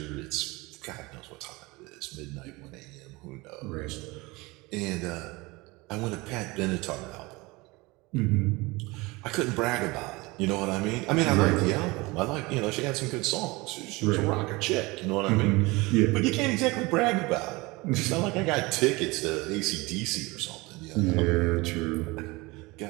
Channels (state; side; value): quieter; left; 23.4 dB